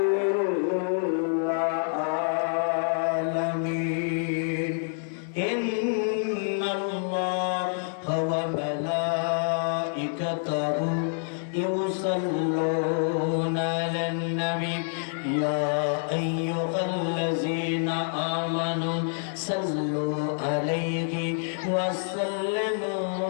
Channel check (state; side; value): silent; right; 60 dB below the other